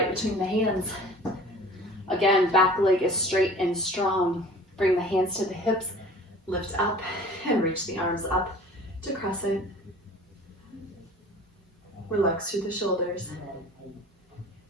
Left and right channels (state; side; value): normal; both; correlation 0.45